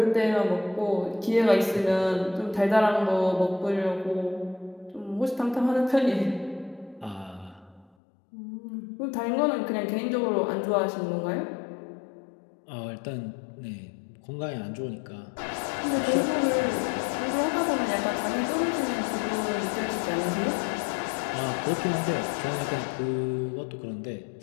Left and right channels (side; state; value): right; drops out; at 7.9 s